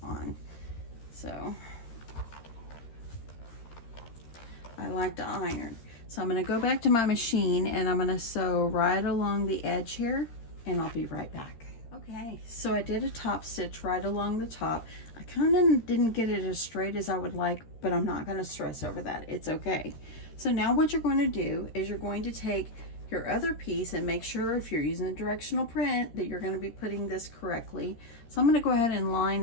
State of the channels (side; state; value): right; late; 13 ms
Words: on. So I like to iron. So I'm going to go back to my machine and I'm going to sew right along the edge here, and I'll be right back. Okay, so I did a top stitch right along the top. I kind of didn't get it as straight as I would like, but I'm not going to stress over that. It's okay. So now what you're going to do is you're going to take your other piece and make sure, if you're using a directional print, that you're going to be putting this correctly. So I'm going to go ahead and line